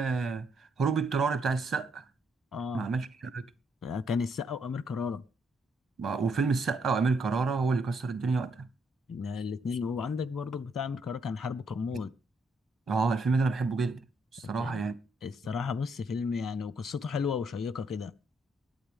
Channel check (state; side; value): normal; both; correlation 0.73